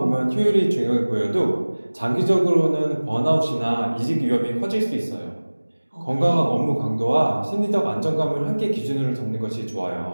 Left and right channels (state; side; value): inverted; both; correlation -1.00